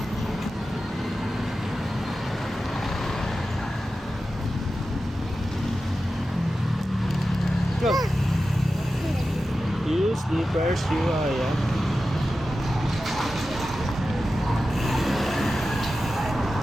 Go. You sleepers, you are, yeah.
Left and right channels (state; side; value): normal; both; correlation 0.93